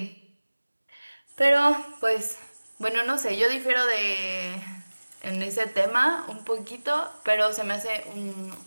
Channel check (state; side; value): inverted; both; correlation -1.00